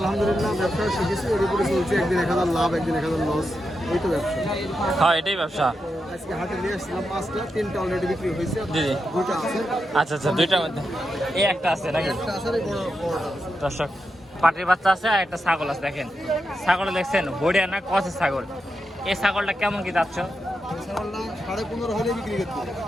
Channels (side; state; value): both; normal; correlation 0.87